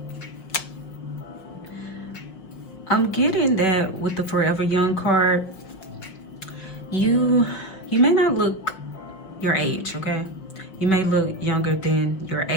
I'm getting that with the Forever Young card, you may not look your age, okay? You may look younger than your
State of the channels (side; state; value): right; late; 5.8 ms